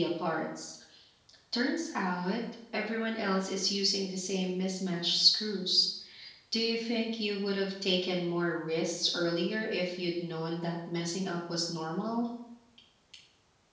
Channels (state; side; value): identical; both; correlation 1.00